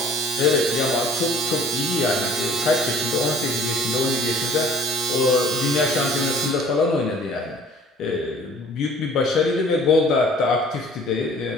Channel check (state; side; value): normal; both; correlation 0.52